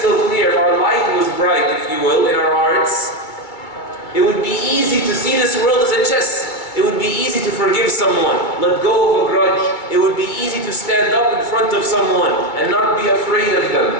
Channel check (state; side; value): late; right; 2.2 ms